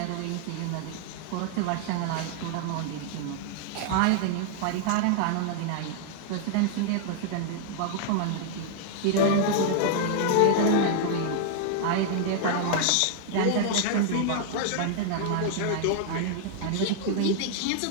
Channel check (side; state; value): both; different; correlation -0.01